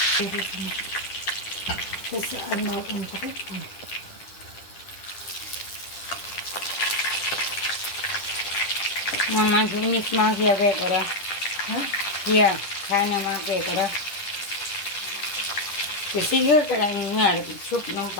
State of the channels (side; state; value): right; late; 10 ms